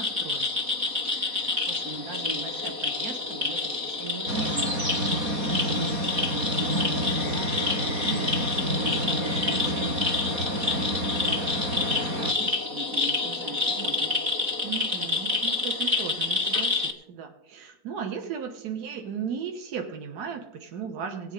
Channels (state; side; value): late; left; 4.0 ms